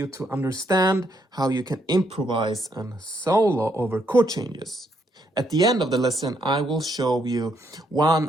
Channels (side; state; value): both; normal; correlation 0.74